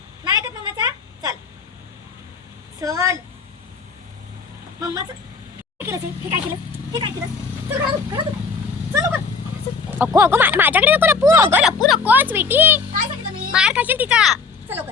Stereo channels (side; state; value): right; quieter; 4.8 dB